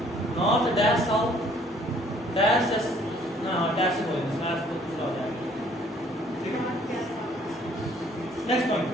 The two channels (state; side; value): normal; both; correlation 0.60